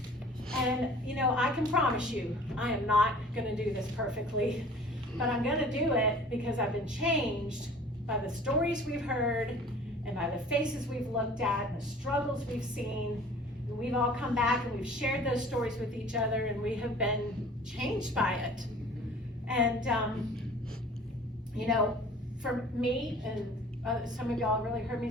And you know, I can promise you, I am not gonna do this perfectly, but I'm gonna do it because I've been changed by the stories we've heard and by the faces we've looked at and the struggles we've seen. And we've all come back and we've shared those stories with each other, and we have been changed by it. And you know, for me, and some of y'all really heard me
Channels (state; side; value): normal; both; correlation 0.47